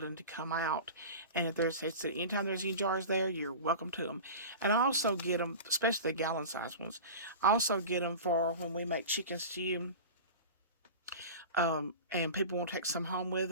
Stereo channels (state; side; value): inverted; both; correlation -0.32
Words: to come out. And if anytime there's any jars there, you're welcome to them. And I also get them, especially the gallon size ones. I also get them for when we make chicken stew. And people won't take some home with